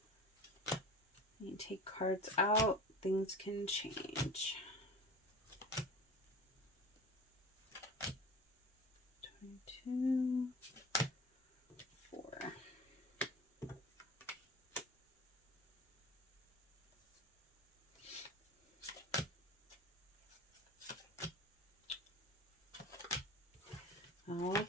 You take cards out. Things can change. 22, 4.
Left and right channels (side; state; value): both; normal; correlation 0.38